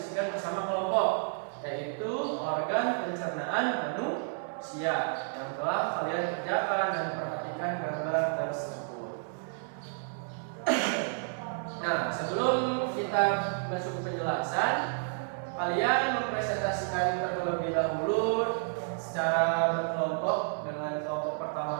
bersama kelompok, yaitu organ pencernaan manusia yang telah kalian kerjakan dan perhatikan gambar tersebut. Nah, sebelum kita masuk ke penjelasan, kalian mempresentasikan terlebih dahulu secara berkelompok dengan kelompok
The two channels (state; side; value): silent; left; 56 dB below the other